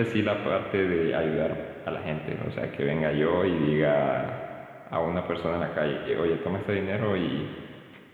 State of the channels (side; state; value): both; identical; correlation 1.00